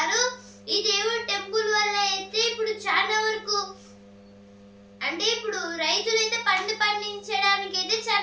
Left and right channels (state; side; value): identical; both; correlation 1.00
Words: ఈ దేవుడి టెంపుల్ వల్ల అయితే ఇప్పుడు చాలా వరకు అంటే ఇప్పుడు రైతులు అయితే పండించడానికి అయితే